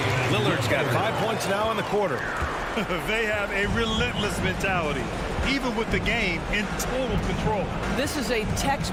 Lillard's got 5 points now in the quarter. They have a relentless mentality, even with the game in total control. This is a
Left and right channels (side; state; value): both; identical; correlation 1.00